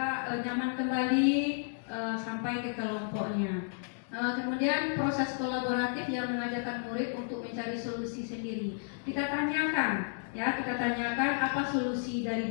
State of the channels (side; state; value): right; silent; digital silence